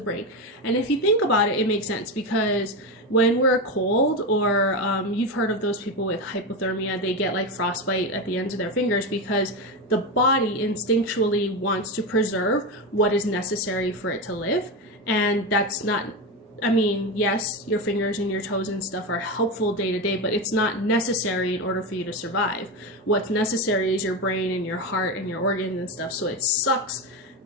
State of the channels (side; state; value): both; normal; correlation 0.16